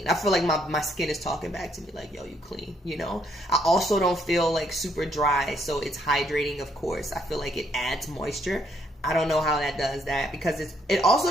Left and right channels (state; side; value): normal; both; correlation 0.71